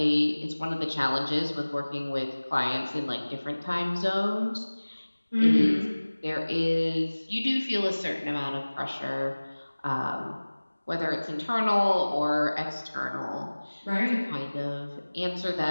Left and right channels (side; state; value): both; inverted; correlation -1.00